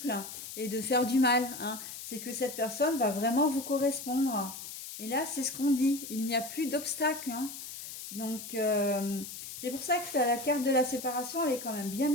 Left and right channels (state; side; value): noise; left; hiss, 10 dB below the sound